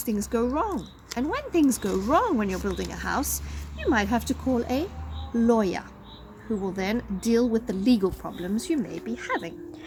things go wrong. And when things go wrong when you're building a house, you might have to call a lawyer, who will then deal with the legal problems you may be having.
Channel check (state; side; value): identical; both; correlation 1.00